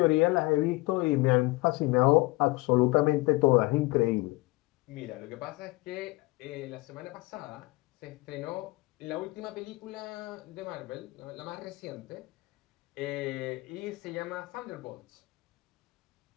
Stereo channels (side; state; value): right; quieter; 22.6 dB